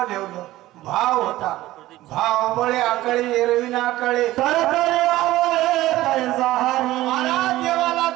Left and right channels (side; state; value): left; quieter; 16.2 dB